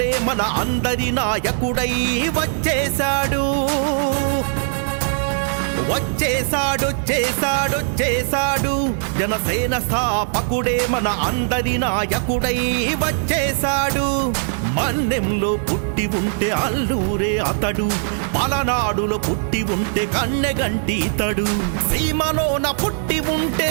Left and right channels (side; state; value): left; silent; digital silence